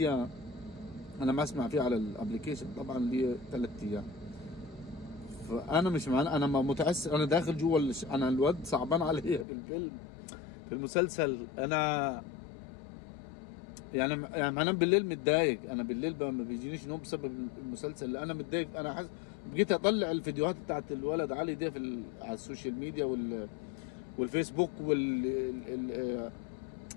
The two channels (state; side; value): drops out; right; at 9.5 s